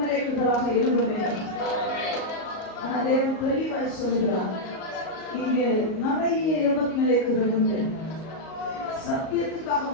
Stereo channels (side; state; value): right; late; 38 ms